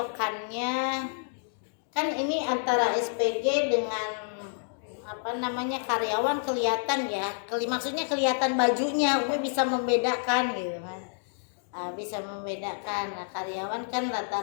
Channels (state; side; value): silent; right; digital silence